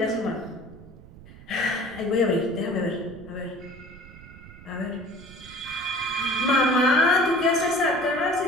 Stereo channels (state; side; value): noise; right; rumble, 19 dB below the sound